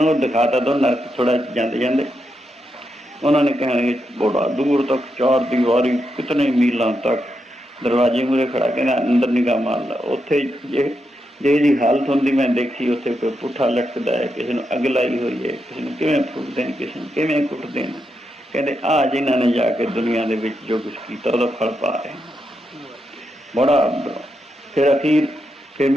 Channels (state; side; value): normal; both; correlation 0.84